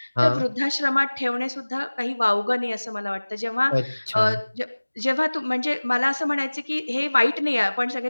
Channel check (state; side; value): inverted; both; correlation -1.00